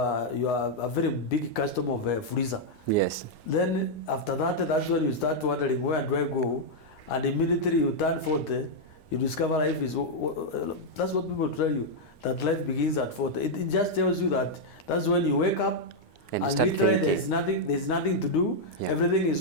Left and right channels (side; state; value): right; late; 9.7 ms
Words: very big customer of freezer. Yes. Then after that's when you start wondering, where do I go? And immediately you turn 40, you discover life is. That's what people tell you, that life begins at 40. It just tells you that's when you wake up and literally there's nothing to do. Yeah. Everything is